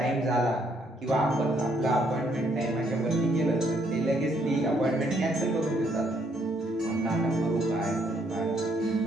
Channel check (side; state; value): both; normal; correlation 0.70